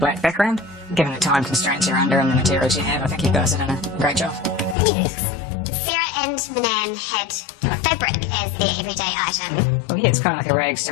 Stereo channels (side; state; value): right; drops out; at 4.8 s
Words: background. Given the time constraints you're under and the materials you have, I think you guys have done a great job. Yes. Sarah and and Manan had fabric as their everyday item. Well, yeah, it's kind of like a rags